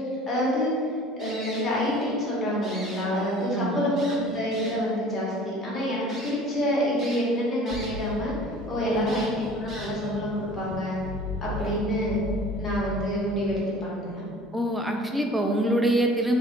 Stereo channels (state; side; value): normal; both; correlation 0.47